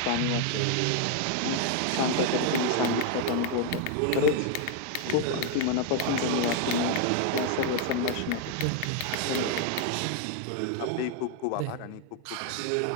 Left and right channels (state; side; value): different; both; correlation 0.00